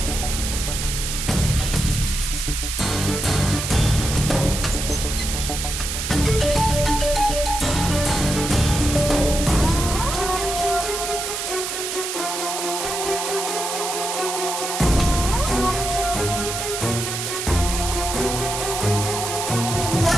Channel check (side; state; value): right; noise; hiss, 4 dB below the sound